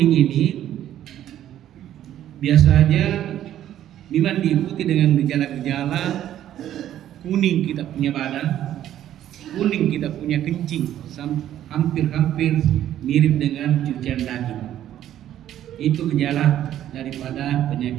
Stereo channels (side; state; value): left; quieter; 11.7 dB